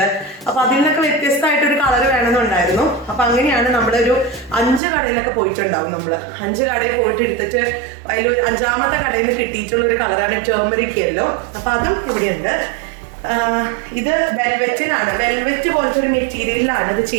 അപ്പൊ അതിൽ നിന്നൊക്കെ വ്യത്യസ്തമായിട്ടൊരു കളർ വേണമെന്നുണ്ടായിരുന്നു. അപ്പൊ അങ്ങനെയാണ് നമ്മളൊരു 5 കടയിലൊക്കെ പോയിട്ടുണ്ടാവും. നമ്മള് 5 കടയിൽ പോയിട്ട് എടുത്തിട്ട് അതിൽ 5ാമത്തെ കടയിൽ നിന്ന് കിട്ടിയിട്ടുള്ള ഒരു കളറാണ് ടേമറിക് യെല്ലോ. അപ്പൊ അതും ഇവിടെയുണ്ട്. ഇത് വെൽവെറ്റിനാണ്. വെൽവെറ്റ് പോലത്തെ ഒരു മെറ്റീരിയലിലാണ് ഇത്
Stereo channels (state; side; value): drops out; left; at 4.8 s